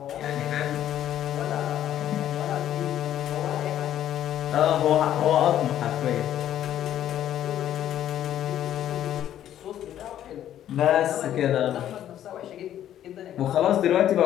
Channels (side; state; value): right; quieter; 11.3 dB